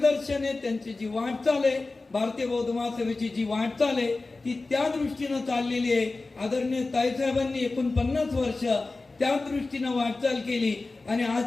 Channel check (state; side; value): quieter; right; 3.5 dB